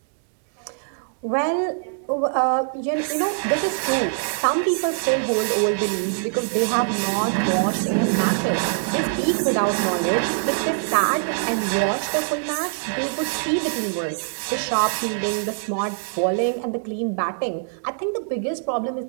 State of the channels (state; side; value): silent; left; digital silence